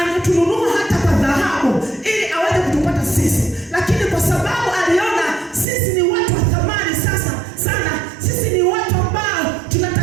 hata kwa dhahabu ili aweze kutupata sisi. Lakini kwa sababu aliona sisi ni watu wa thamani sana, sisi ni watu ambao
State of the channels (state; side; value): drops out; left; at 5.7 s